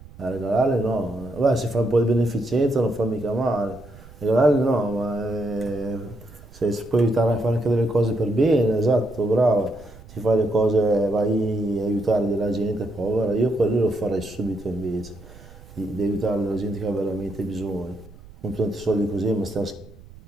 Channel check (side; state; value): right; noise; rumble, 20 dB below the sound